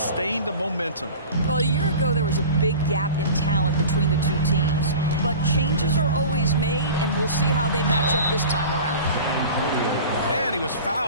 the momentum. Well, a year ago, there was a big gap in talent between the two teams. But changes are always made, and we'll see how they match up this time around. And he was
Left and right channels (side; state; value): both; inverted; correlation -0.37